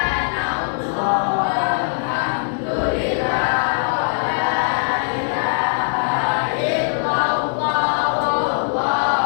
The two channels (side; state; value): right; silent; 60 dB below the other